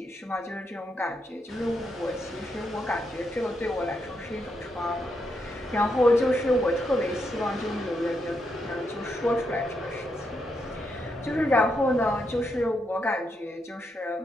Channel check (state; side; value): normal; both; correlation 0.81